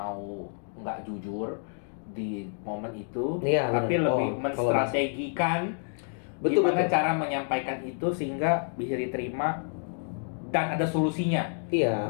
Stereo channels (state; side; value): silent; right; 58 dB below the other